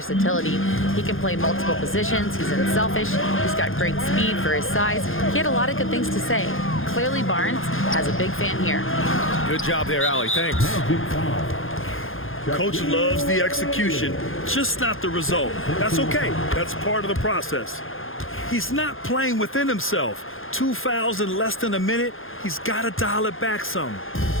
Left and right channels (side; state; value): right; late; 0.59 ms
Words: He can play multiple positions. He's unselfish. He's got great speed for his size. He had a lot of good things to say. Clearly, Barnes has a big fan here. Good job there, Allie. Thanks. Coach loves the execution, just not the result. That's okay. That's part of the process. He's not playing within himself. 2 fouls in less than a minute. He's got to dial it back some.